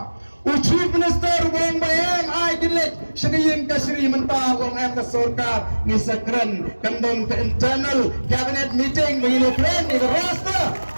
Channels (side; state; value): both; inverted; correlation -1.00